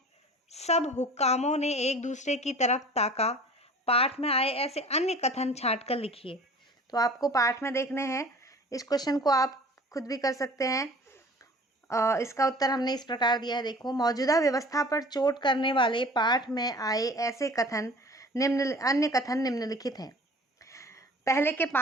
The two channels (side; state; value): both; normal; correlation 0.45